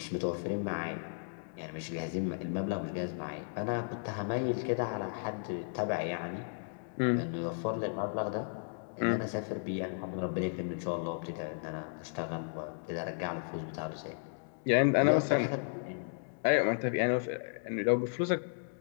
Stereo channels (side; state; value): right; silent; digital silence